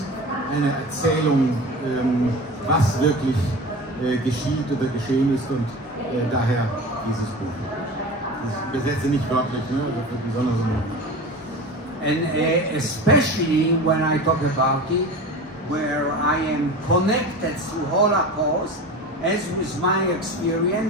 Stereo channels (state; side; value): normal; both; correlation 0.32